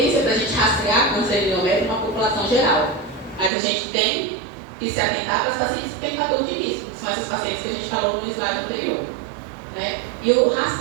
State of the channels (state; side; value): drops out; left; at 3.5 s